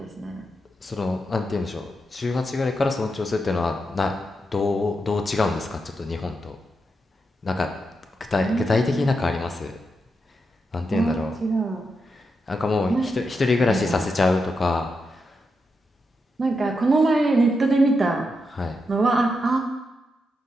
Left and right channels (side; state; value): both; normal; correlation 0.85